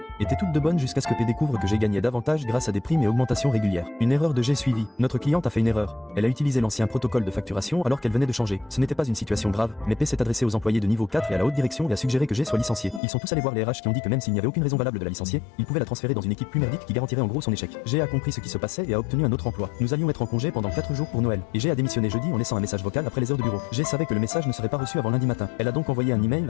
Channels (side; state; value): right; drops out; at 13.0 s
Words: étaient toutes de bonnes jusqu'à ce que P découvre que G gagnait davantage grâce à des primes et augmentations régulières. Une erreur de G suivie. Notre cliente a fait une erreur. Elle a utilisé l'ancien protocole de facturation alors qu'elle venait de changer. Ce n'était pas une situation grave, mais P s'est adressé aux employés de niveau 4 et à la haute direction et a suggéré que G soit licencié. Ils sont tous allés voir les RH qui ont dit que même s'il n'y avait aucune raison valable de la licencier, ils pouvaient la transférer dans une équipe plus merdique qui garantirait en gros son échec. G a compris ce qui se passait et a obtenu un autre emploi. Nous allions être en congé pendant 4 jours pour Noël. Et G a démissionné jeudi en laissant un message vocal après les heures de bureau. G savait que le message ne serait pas reçu avant lundi matin. Elle a donc envoyé un email